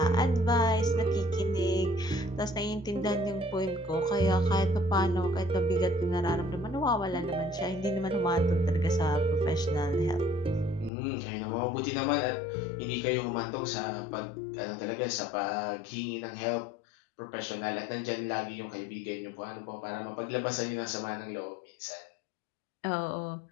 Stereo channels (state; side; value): drops out; right; at 10.9 s